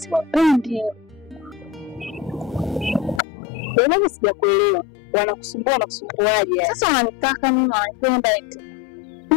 Wewe sijakuelewa. Wanakusumbua na kusumbuaje? Sasa wananitaka mimi wanapenda eti.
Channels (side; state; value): right; drops out; at 3.2 s